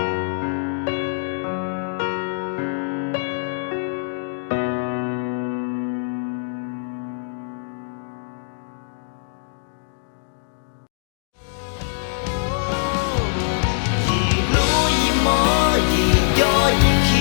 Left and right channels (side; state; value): right; silent; digital silence